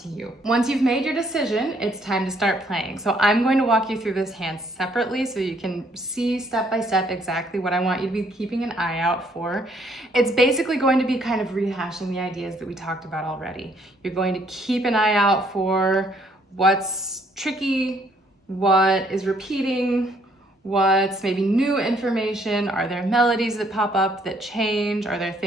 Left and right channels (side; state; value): both; normal; correlation 0.67